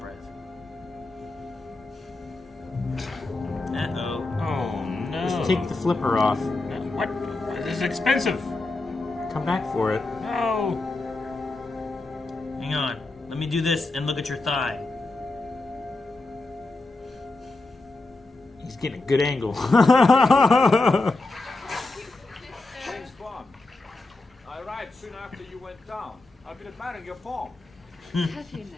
breath? Uh-oh. Oh, no. Just take the flipper off. What? This is expensive. Come back for it. No. Hang on. Let me do this and look at your thigh. He's getting a good angle. James Bond. I arrived soon after you went down. I've been admiring your form. Have you now?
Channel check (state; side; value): quieter; right; 3.2 dB